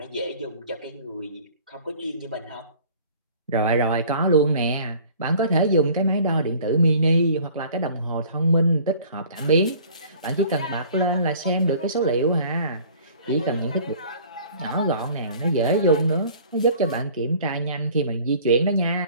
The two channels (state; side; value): inverted; both; correlation -0.49